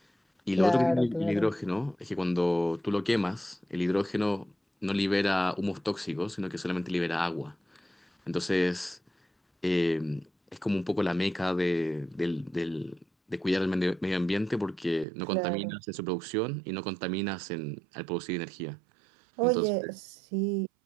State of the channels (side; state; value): left; drops out; at 15.1 s